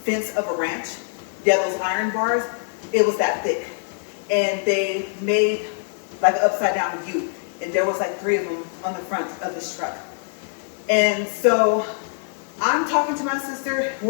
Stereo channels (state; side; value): silent; right; digital silence